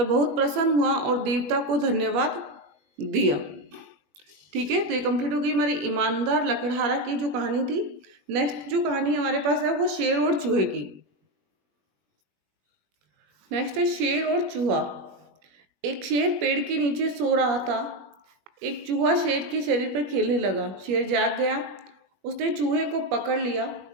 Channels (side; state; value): left; late; 21 ms